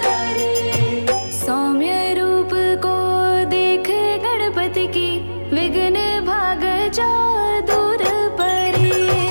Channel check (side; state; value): both; inverted; correlation -1.00